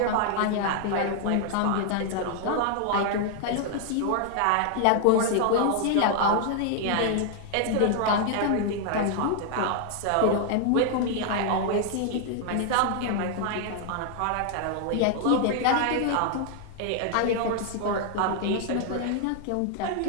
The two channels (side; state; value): both; different; correlation 0.00